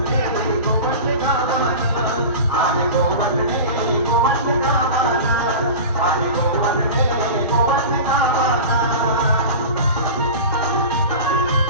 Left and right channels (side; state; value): both; inverted; correlation -0.32